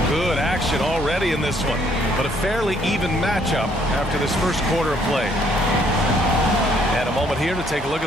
Good action already in this one, but a fairly even matchup after this first quarter of play. And a moment here to take a look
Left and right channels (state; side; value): normal; both; correlation 0.66